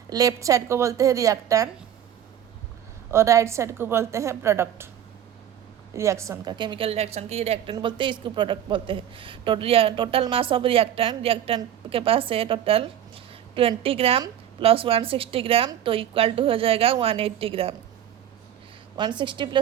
लेफ्ट साइड को बोलते हैं रिएक्टेंट और राइट साइड को बोलते हैं प्रोडक्ट। रिएक्शन का, केमिकल रिएक्शन की रिएक्टेंट बोलते हैं, इसको प्रोडक्ट बोलते हैं। टोटल मास ऑफ रिएक्टेंट के पास है टोटल 20 ग्राम प्लस 160 ग्राम, तो इक्वल टू हो जाएगा 180 ग्राम। 160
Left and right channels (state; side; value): quieter; left; 10.5 dB